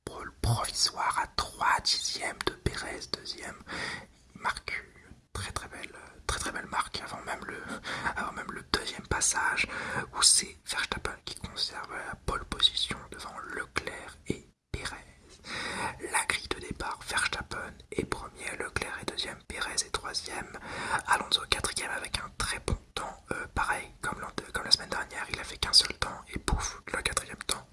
pole provisoire à 3 dixièmes de Perez, deuxième. Il marque une très belle marque avant même le deuxième passage où c'est Verstappen qui conserve la pole position devant Leclerc et Perez. La grille de départ, Verstappen est premier, Leclerc est deuxième, Perez est troisième, Alonso quatrième avec un très bon temps, pareil comme la semaine dernière, il a fait qu'un seul temps et pouf, le quatrième temps,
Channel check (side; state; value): both; identical; correlation 1.00